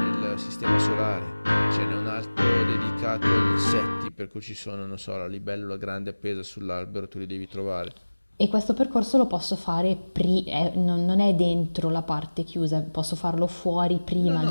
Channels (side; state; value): both; inverted; correlation -1.00